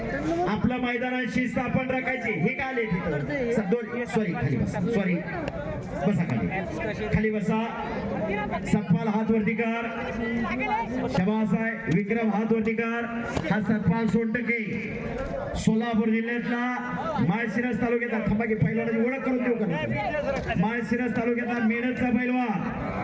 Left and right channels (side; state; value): both; identical; correlation 1.00